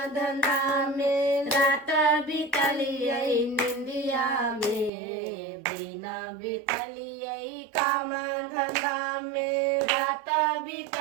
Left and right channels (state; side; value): drops out; left; at 4.9 s